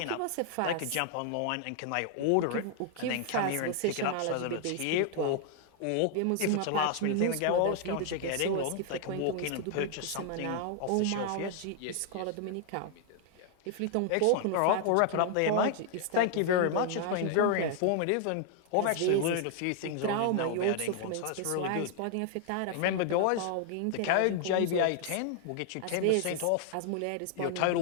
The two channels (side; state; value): both; different; correlation 0.00